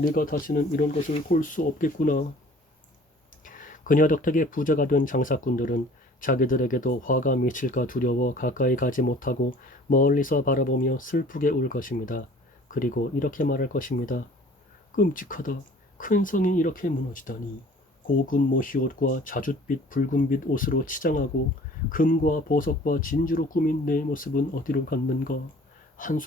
다시는 이런 것을 볼 수 없겠구나. 그녀 덕택에 부자가 된 장사꾼들은 자기들에게도 화가 미칠까 두려워 가까이 가지 못하고 멀리서 바라보며 슬프게 울 것입니다. 그리고 이렇게 말할 것입니다. 끔찍하다. 큰 성이 이렇게 무너지다니. 고급 모시옷과 자줏빛 붉은빛 옷으로 치장하고 금과 보석과 진주로 꾸민 내 모습은 어디로 갔는가.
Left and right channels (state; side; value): normal; both; correlation 0.50